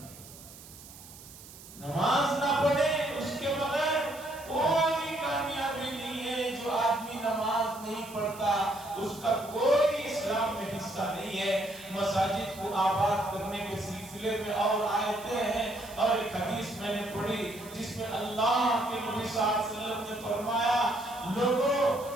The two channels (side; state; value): right; noise; hiss, 18 dB below the sound